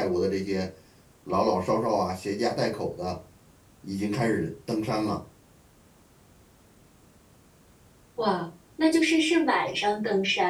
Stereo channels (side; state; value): both; identical; correlation 1.00